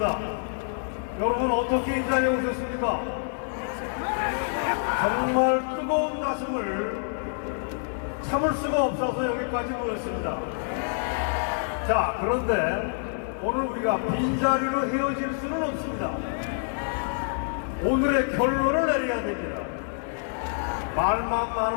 여러분 어떻게 이 자리에 오셨습니까? 정말 뜨거운 가슴을 참을 수가 없어서 여기까지 모였습니다. 자, 그런데 오늘 우리가 빈자리로 헤어질 수는 없습니다. 오늘의 결론을 내려야 됩니다. 말만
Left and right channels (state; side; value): silent; right; digital silence